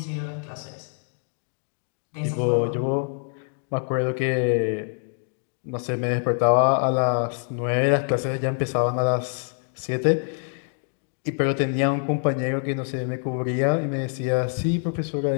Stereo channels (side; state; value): right; silent; 62 dB below the other